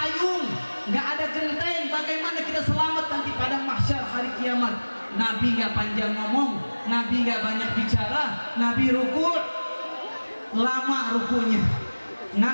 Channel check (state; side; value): inverted; both; correlation -1.00